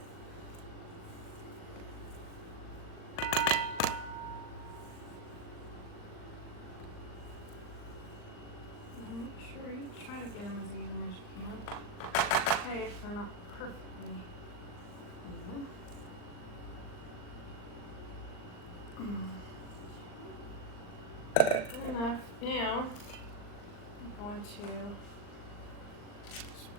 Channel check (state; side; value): late; right; 39 ms